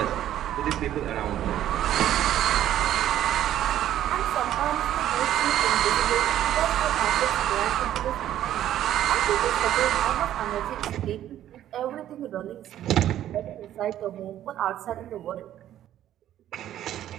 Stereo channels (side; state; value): left; quieter; 11.9 dB